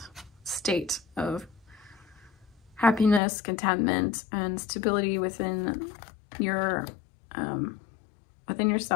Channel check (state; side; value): drops out; right; at 3.2 s